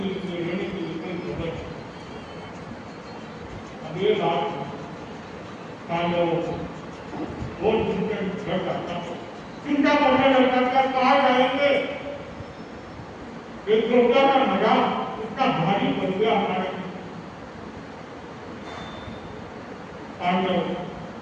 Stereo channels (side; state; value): both; identical; correlation 1.00